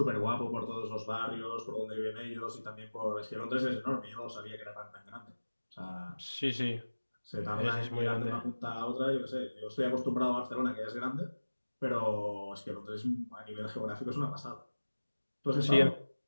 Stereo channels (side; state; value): both; inverted; correlation -1.00